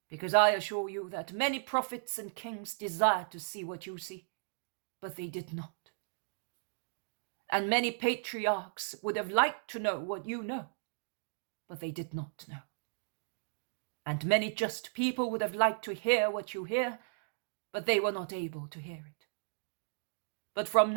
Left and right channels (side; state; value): left; silent; digital silence